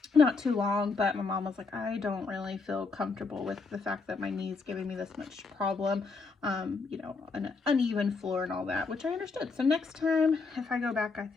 not too long, but my mom was like, I don't really feel comfortable with the fact that my knee's giving me this much problem, you know, an uneven floor and all that, which I understood. So next time, if I go back, I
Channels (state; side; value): quieter; right; 4.3 dB